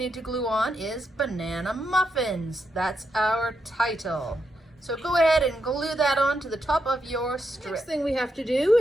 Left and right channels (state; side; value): normal; both; correlation 0.82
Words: to glue on is banana muffins. That's our title. So go ahead and glue that on to the top of your strip. Next thing we have to do,